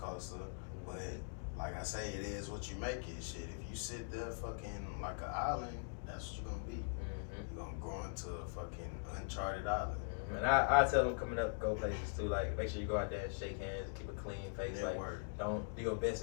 but like I say, it is what you make it, shit. If you sit there fucking like an island, that's what you're gonna be. You're gonna grow into a fucking uncharted island. And I tell them coming up, go places too. Like, make sure you go out there and shake hands and keep a clean face. Like, don't do your best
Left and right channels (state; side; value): silent; right; digital silence